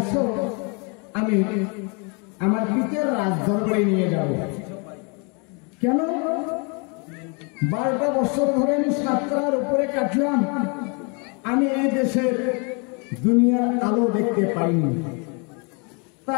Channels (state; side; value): quieter; right; 33.8 dB